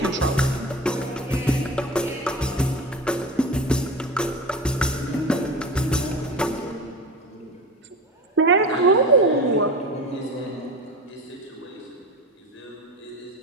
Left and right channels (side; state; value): both; normal; correlation 0.30